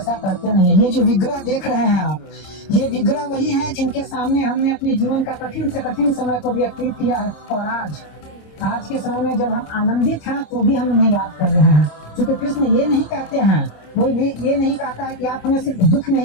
करते नहीं है। ये जो विग्रह देख रहे हैं आप, ये विग्रह वही है जिनके सामने हमने अपने जीवन का कठिन से कठिन समय को व्यतीत किया है। और आज के समय में जब हम आनंदित हैं तो भी हम उन्हें याद कर रहे हैं, क्योंकि कृष्ण ये नहीं कहते हैं, कोई भी ये नहीं कहता है कि आप हमें सिर्फ दुख में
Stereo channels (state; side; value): late; right; 26 ms